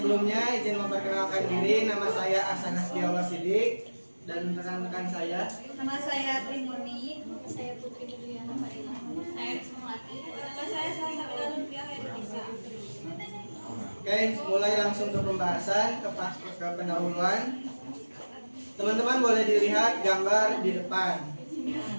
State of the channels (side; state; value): both; inverted; correlation -1.00